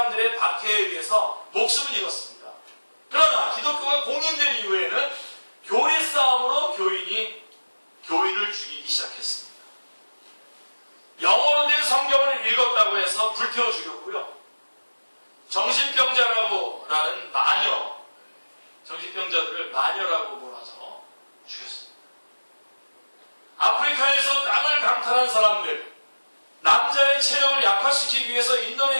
박해에 의해서 목숨을 잃었습니다. 그러나 기독교가 공인된 이후에는 교리 싸움으로 교인이 교인을 죽이기 시작했습니다. 영어로 된 성경을 읽었다고 해서 불태워 죽였고요. 정신병자라고라는 마녀, 정신병자들을 마녀라고 몰아서 죽였습니다. 아프리카에서 땅을 강탈한 사람들, 남자의 체력을 약화시키기 위해서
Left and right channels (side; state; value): both; inverted; correlation -1.00